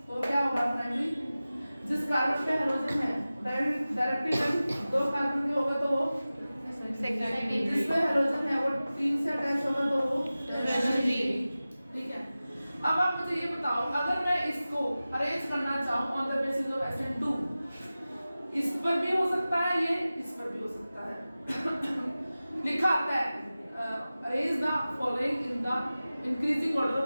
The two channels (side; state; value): both; inverted; correlation -0.96